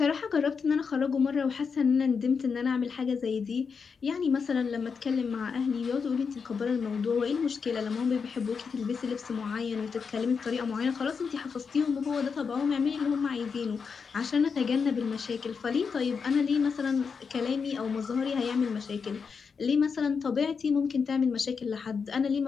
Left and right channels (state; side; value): quieter; right; 5.7 dB